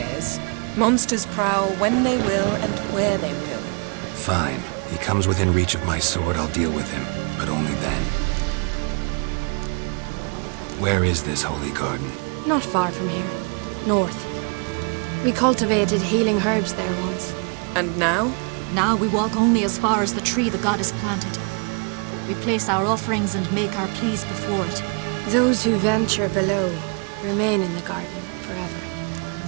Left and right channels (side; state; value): left; quieter; 36.7 dB